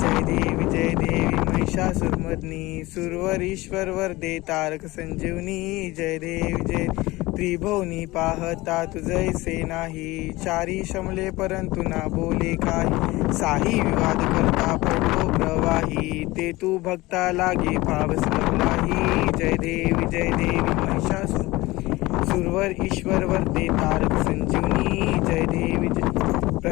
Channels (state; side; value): quieter; right; 20.2 dB